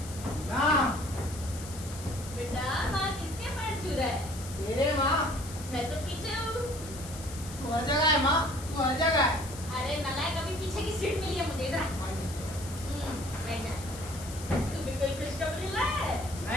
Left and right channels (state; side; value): noise; left; hiss, 13 dB below the sound